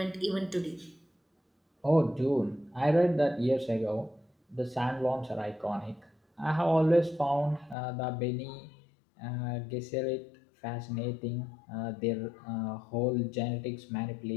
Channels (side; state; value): right; drops out; at 7.8 s